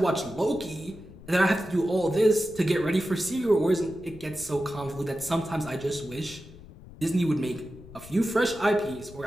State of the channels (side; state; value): left; noise; rumble, 18 dB below the sound